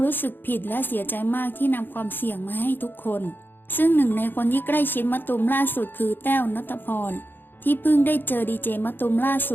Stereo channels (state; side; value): late; right; 0.096 ms